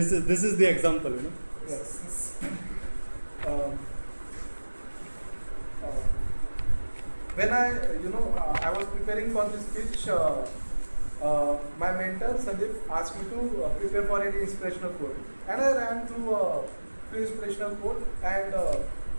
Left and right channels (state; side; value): inverted; both; correlation -1.00